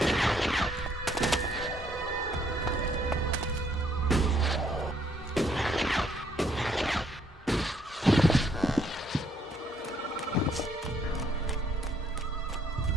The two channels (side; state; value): both; normal; correlation 0.68